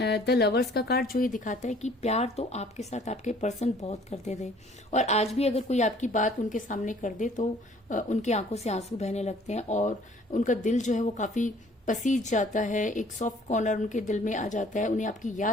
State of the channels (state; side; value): normal; both; correlation 0.56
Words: लवर्स का कार्ड, जो ये दिखाता है कि प्यार तो आपके साथ आपके पर्सन बहुत करते थे, और आज भी अगर कोई आपकी बात उनके सामने कर दे तो उनकी आंखों से आंसू बहने लगते हैं और उनका दिल जो है वो काफी पसीज जाता है, एक सॉफ्ट कॉर्नर उनके दिल में आ जाता है, उन्हें आपकी